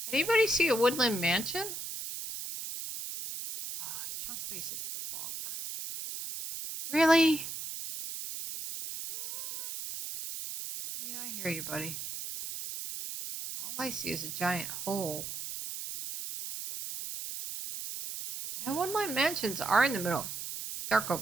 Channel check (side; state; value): right; noise; hiss, 7 dB below the sound